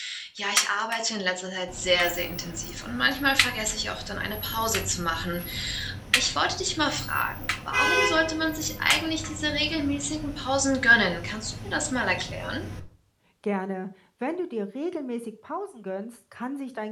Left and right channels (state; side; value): identical; both; correlation 1.00